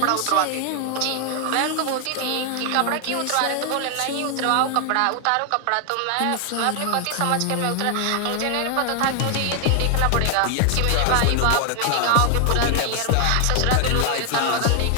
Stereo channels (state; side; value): different; both; correlation 0.00